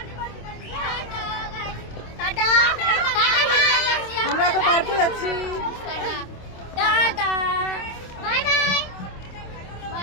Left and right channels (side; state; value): right; late; 26 ms